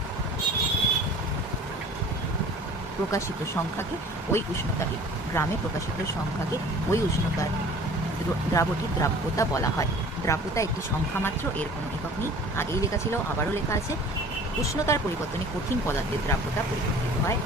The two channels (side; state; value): both; normal; correlation 0.46